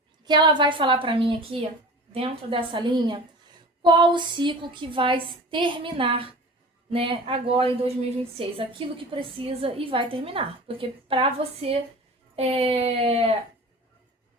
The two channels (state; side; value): normal; both; correlation 0.38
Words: que ela vai falar para mim aqui, dentro dessa linha, qual o ciclo que vai terminar, né, agora em 2026. Aquilo que precisa e vai terminar. Porque para você